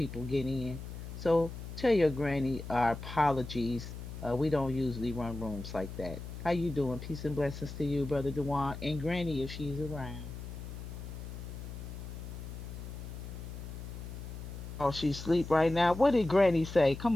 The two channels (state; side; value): noise; left; hum, 9 dB below the sound